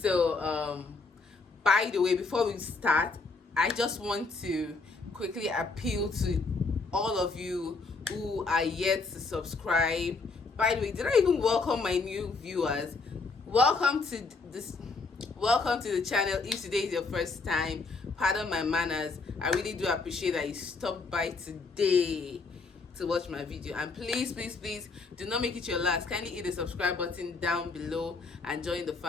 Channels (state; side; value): quieter; right; 4.0 dB